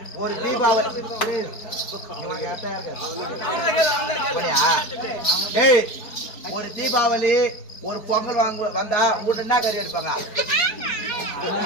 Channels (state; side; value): late; right; 4.7 ms